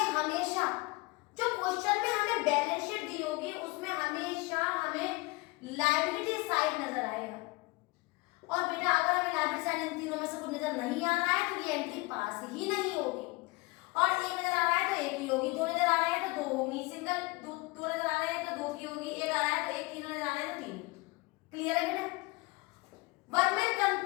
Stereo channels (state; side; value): quieter; right; 24.2 dB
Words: हमेशा जो क्वेश्चन में हमें बैलेंस शीट दी होगी उसमें हमेशा हमें लायबिलिटी साइड नजर आएगा। और बेटा अगर हमें लायबिलिटी साइड इन तीनों में से कुछ नजर नहीं आ रहा है तो ये एंट्री पास ही नहीं होगी, और एक नजर आ रहा है तो एक ही होगी, दो नजर आ रहे हैं तो दो होगी, सिंगल दो नजर आ रहे हैं तो दो की होगी, एक आ रहा है तो एक, तीन नजर आ रहे हैं तो तीन, क्लियर है बेटा। वर्कमैन